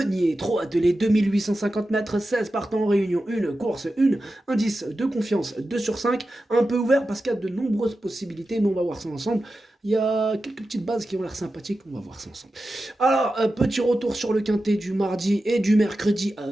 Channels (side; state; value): both; normal; correlation 0.92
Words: Trop attelé, 2850 mètres, 16 partants en réunion, une course, une indice de confiance 2 sur 5, un peu ouvert parce qu'il y a de nombreuses possibilités, mais on va voir ça ensemble. Il y a quelques petites bases qui ont l'air sympathiques, on va voir ça ensemble. Alors, petit retour sur le quintet du mardi et du mercredi